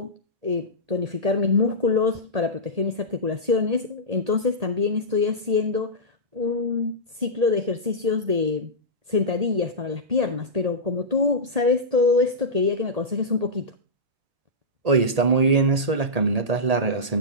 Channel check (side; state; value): left; late; 1.8 ms